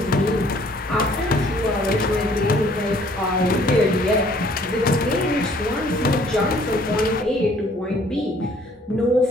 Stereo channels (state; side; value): normal; both; correlation 0.59